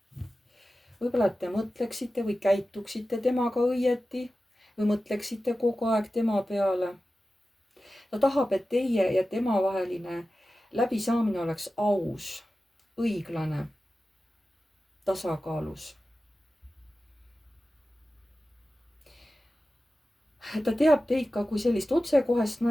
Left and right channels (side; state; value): both; normal; correlation 0.94